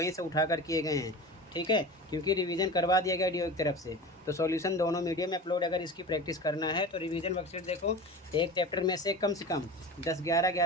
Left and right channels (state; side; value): normal; both; correlation 0.32